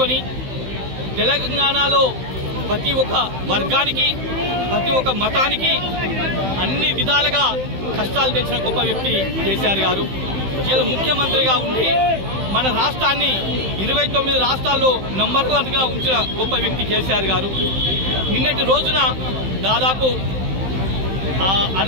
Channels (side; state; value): left; late; 15 ms